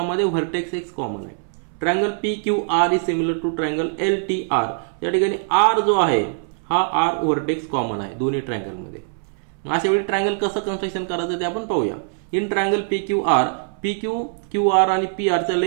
व्हर्टेक्स X कॉमन आहे. Triangle PQR is similar to triangle LTR. या ठिकाणी R जो आहे हा R व्हर्टेक्स कॉमन आहे दोन्ही ट्रायंगलमध्ये. अशा वेळी ट्रायंगल कसं कन्स्ट्रक्शन करायचं ते आपण पाहूया. इन ट्रायंगल PQR, QR आणि PR च्या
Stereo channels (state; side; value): silent; left; 64 dB below the other